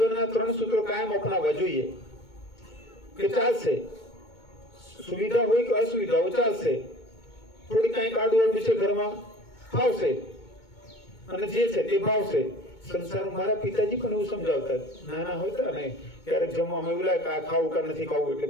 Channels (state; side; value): late; right; 2.2 ms